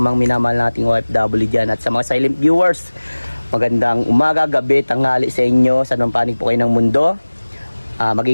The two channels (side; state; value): both; inverted; correlation -1.00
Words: mga minamahal nating OFW dyan at sa mga silent viewers. Magandang umaga, gabi, tanghali sa inyo, sa anong panig po kayo ng mundo.